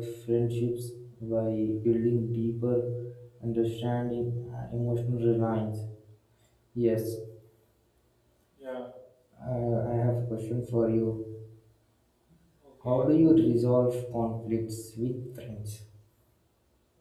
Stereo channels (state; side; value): identical; both; correlation 1.00